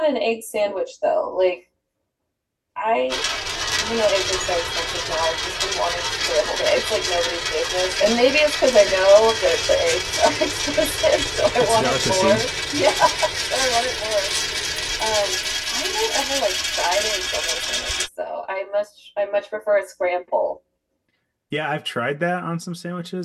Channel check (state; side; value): identical; both; correlation 1.00